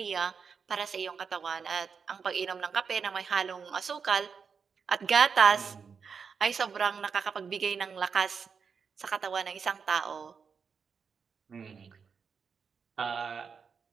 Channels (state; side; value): quieter; left; 6.0 dB